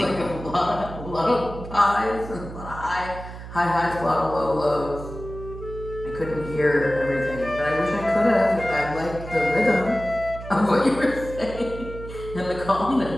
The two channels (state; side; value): noise; right; hum, 12 dB below the sound